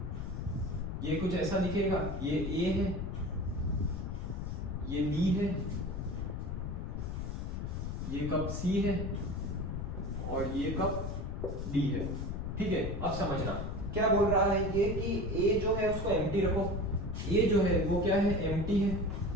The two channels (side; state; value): left; noise; rumble, 4 dB below the sound